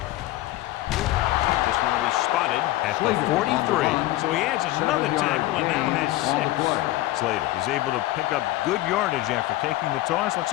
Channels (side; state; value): right; quieter; 16.7 dB